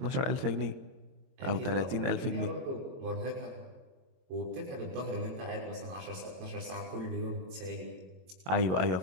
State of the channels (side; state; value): left; late; 22 ms